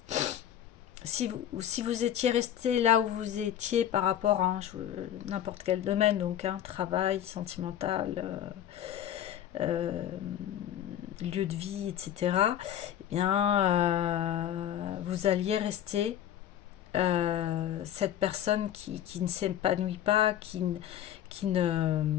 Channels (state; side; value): quieter; right; 10.9 dB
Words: si vous étiez resté là où vous étiez par rapport à n'importe quel domaine, donc travail, sentimental, lieu de vie, etc., eh bien, vous alliez rester cette personne qui ne s'épanouit pas, qui ne,